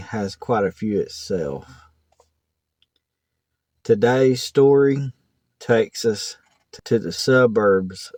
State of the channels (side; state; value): both; identical; correlation 1.00